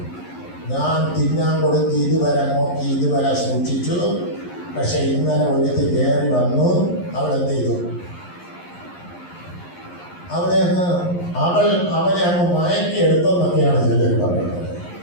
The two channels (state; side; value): late; right; 11 ms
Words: ഞാൻ തിന്നാൻ കൊടുത്ത് ഇതുവരെ നോക്കി ഇതുവരെ സൂക്ഷിച്ചു. പക്ഷെ ഇന്നലെ ഒരുത്തി കയറി വന്നു. അവൾ എന്ത് ചെയ്തു? അവനെ അവനെ അങ്ങ് മയക്കി എടുത്തെന്നൊക്കെയാണ് ചിലർ പറയുന്നത്.